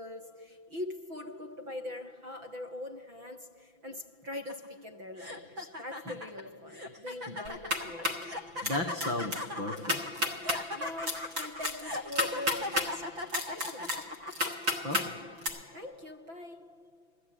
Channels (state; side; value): late; left; 6.0 ms